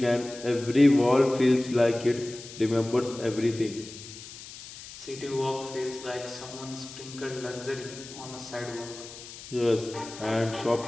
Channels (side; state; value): left; noise; hiss, 15 dB below the sound